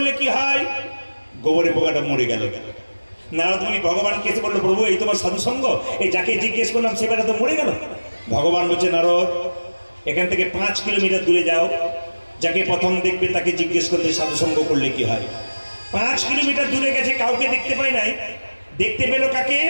কি হয়। গোবরে পোকাটা মরে গেল। নারদ মুনি ভগবানকে এসে বললো প্রভু এই তোমার সাধু সঙ্গ, এই যাকে জিজ্ঞেস করলাম সে বেটা তো মরে গেল। ভগবান বলছে নারদ এখান থেকে 5 কিলোমিটার দূরে যাও, যাকে প্রথম দেখবে তাকে জিজ্ঞেস করলে সাধু সঙ্গ করলে কি হয়। 5 কিলোমিটার দূরে গেছে, কাউকে দেখতে পাই নাই, দেখতে পেল কাকে,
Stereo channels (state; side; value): inverted; both; correlation -1.00